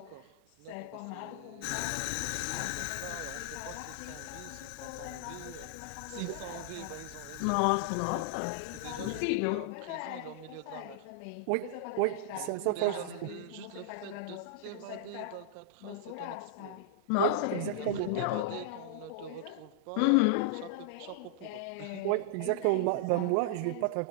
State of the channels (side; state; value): both; different; correlation -0.01